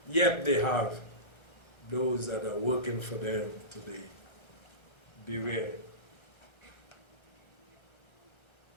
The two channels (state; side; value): late; right; 1.3 ms